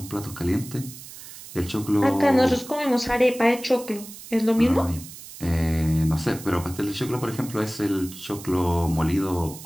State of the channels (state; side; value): noise; right; hiss, 15 dB below the sound